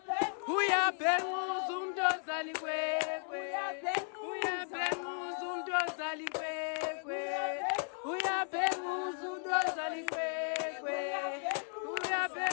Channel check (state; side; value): silent; right; 54 dB below the other